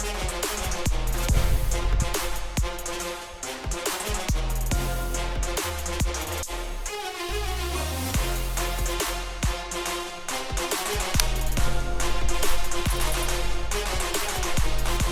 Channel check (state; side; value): identical; both; correlation 1.00